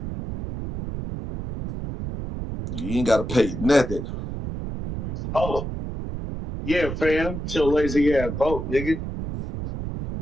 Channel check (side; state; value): right; noise; rumble, 6 dB below the sound